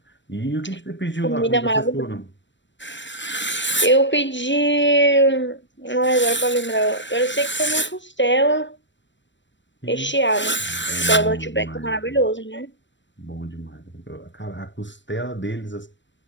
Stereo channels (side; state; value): right; late; 0.53 ms